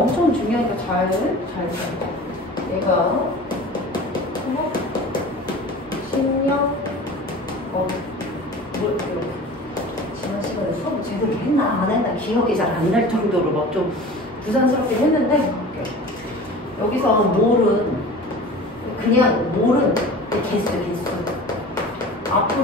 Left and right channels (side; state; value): both; normal; correlation 0.39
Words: 중요하니까 잘 얘가 식량 뭘 지난 시간에 수업 제대로 했나 안 했나 기억이 잘 안 날 정도로 막 좀 부산스럽게 했는데 여기서 몰은 개수.